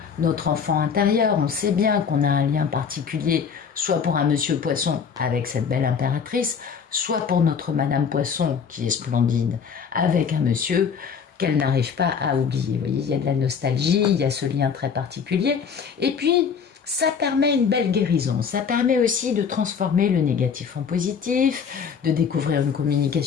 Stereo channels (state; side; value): quieter; right; 6.5 dB